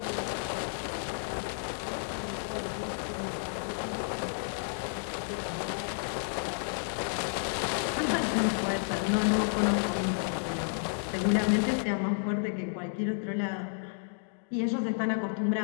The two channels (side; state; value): right; silent; digital silence